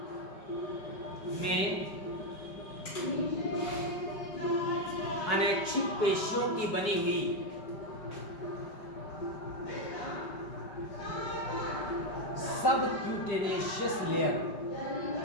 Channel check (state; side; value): late; right; 5.2 ms